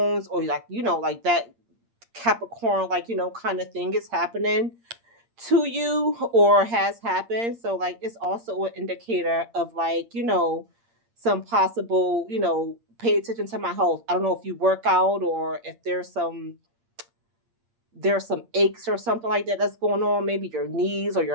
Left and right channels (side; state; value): left; late; 8.7 ms